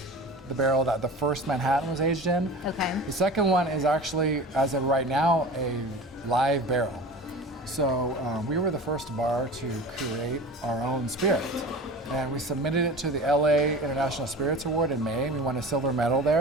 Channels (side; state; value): both; normal; correlation 0.36